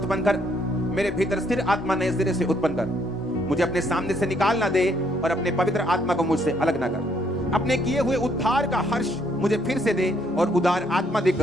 कर, मेरे भीतर स्थिर आत्मा नए सिरे से उत्पन्न कर। मुझे अपने सामने से निकाल ना दे और अपने पवित्र आत्मा को मुझसे अलग ना कर। अपने किए हुए उद्धार का हर्ष मुझे फिर से दे और उदार आत्मा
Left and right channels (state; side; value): normal; both; correlation 0.69